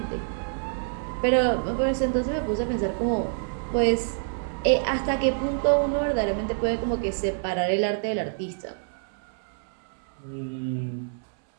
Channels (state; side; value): silent; left; 60 dB below the other